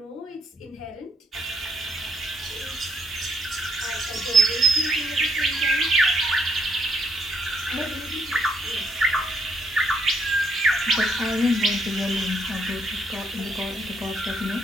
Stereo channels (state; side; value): normal; both; correlation 0.72